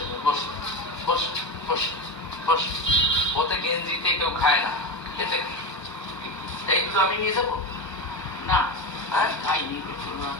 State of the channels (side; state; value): right; late; 1.2 ms